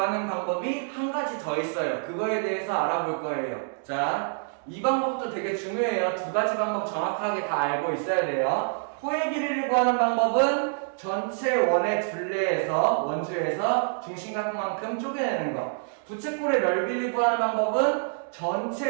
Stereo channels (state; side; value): silent; left; digital silence